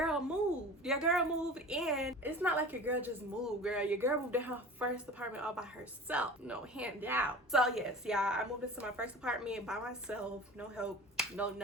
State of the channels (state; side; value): normal; both; correlation 0.38